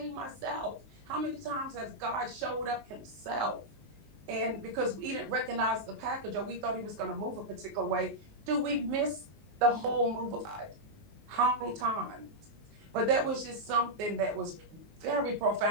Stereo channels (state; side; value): late; left; 19 ms